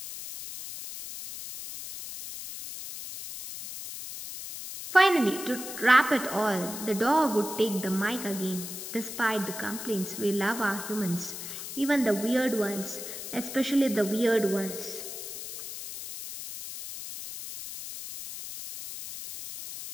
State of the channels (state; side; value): noise; left; hiss, 9 dB below the sound